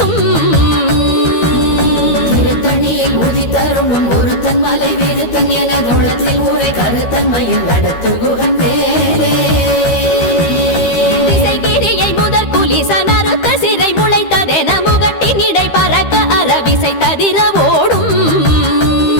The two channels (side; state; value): right; late; 13 ms